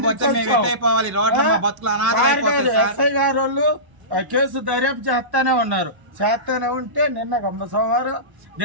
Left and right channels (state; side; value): late; left; 1.0 ms